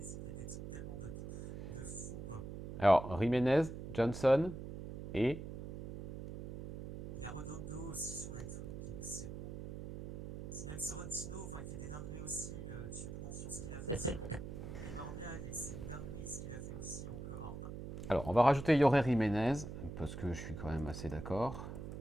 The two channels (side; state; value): right; noise; hum, 8 dB below the sound